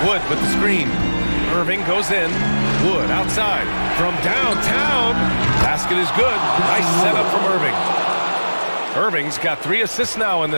Wood with the screen. Irving goes in. Wood outside. From downtown. Basket is good. Nice setup from Irving. Irving's got 3 assists now in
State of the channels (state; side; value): inverted; both; correlation -1.00